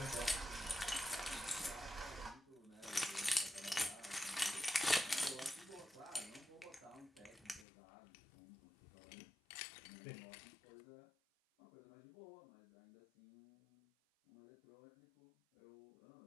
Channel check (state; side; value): drops out; right; at 7.7 s